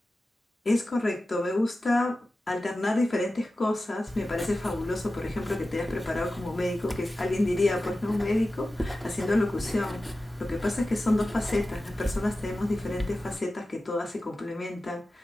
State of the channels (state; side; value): normal; both; correlation 0.94